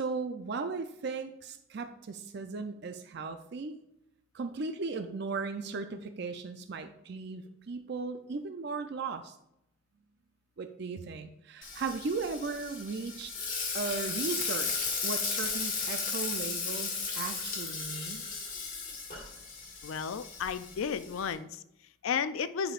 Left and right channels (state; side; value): normal; both; correlation 0.06